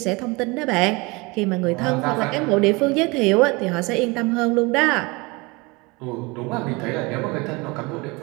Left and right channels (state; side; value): quieter; left; 25.8 dB